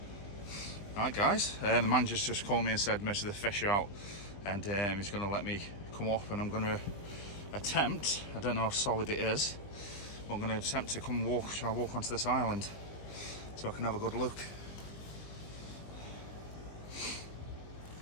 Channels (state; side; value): late; right; 20 ms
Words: Right, guys, the manager's just called me and said most of the fish are out, and he's going to let me come up, and I'm going to attempt, I don't know how solid it is, but I'm going to attempt to try and walk onto this island so I can have a good look.